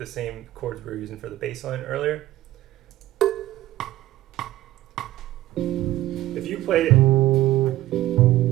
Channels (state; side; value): quieter; left; 15.2 dB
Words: same chords we were using for the bass line earlier. If you played it,